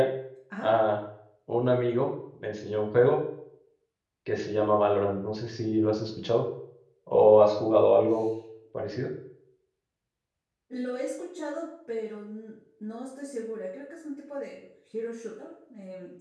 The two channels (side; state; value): both; identical; correlation 1.00